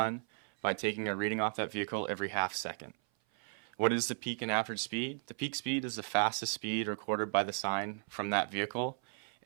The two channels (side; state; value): left; silent; 54 dB below the other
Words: by taking a reading off that vehicle every half second. What is the peak and average speed? The peak speed is the fastest speed recorded by the sign from that vehicle,